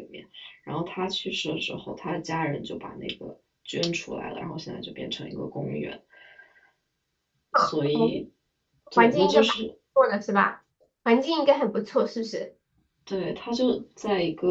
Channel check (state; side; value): identical; both; correlation 1.00